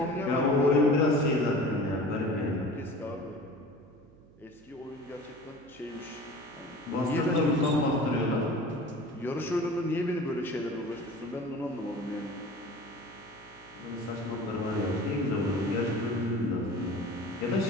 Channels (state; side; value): noise; right; hum, 24 dB below the sound